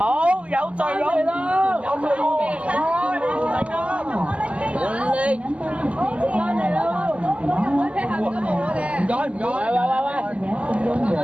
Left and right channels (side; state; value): left; late; 0.062 ms